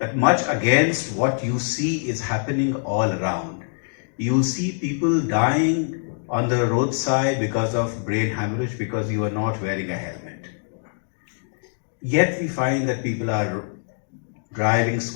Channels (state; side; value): silent; right; digital silence